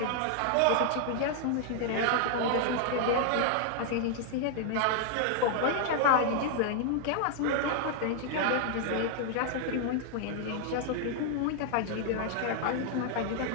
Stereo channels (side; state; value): both; different; correlation 0.00